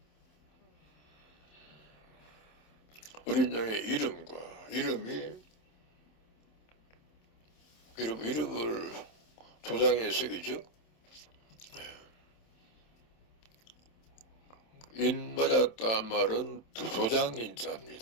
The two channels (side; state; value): right; late; 27 ms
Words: 어린 양의 이름을 도장에 새기죠. 인 맞았다 말은